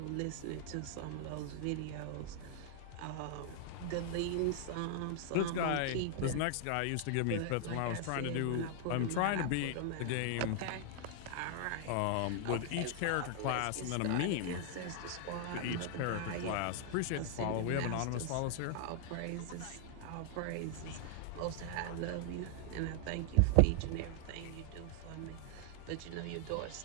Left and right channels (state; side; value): different; both; correlation 0.00